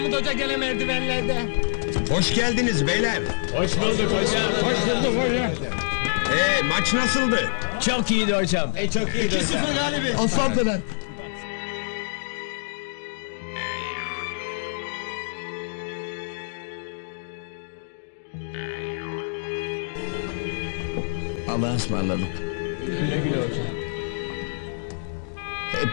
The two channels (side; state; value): right; silent; digital silence